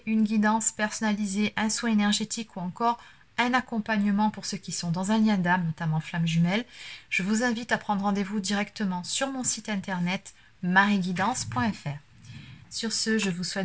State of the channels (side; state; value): both; identical; correlation 1.00